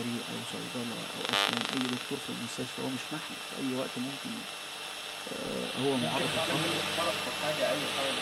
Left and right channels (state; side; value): identical; both; correlation 1.00